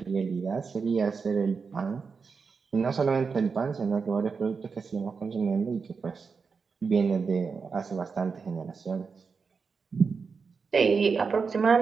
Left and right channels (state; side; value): quieter; left; 5.2 dB